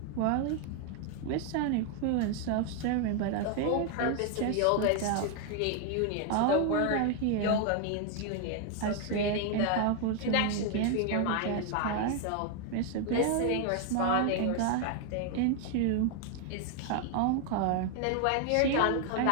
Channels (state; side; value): different; both; correlation 0.00